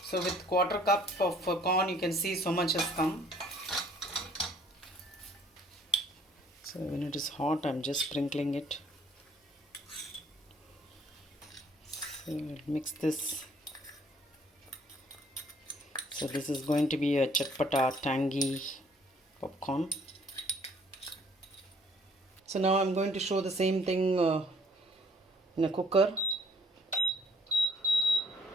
So with quarter cup of corn, you can see so much has come. So when it is hot, I'm just sprinkling it. So mix this. So this is going to be a chatpata, tangy popcorn. So now I'm going to show the same thing in a cooker.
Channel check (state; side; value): normal; both; correlation 0.61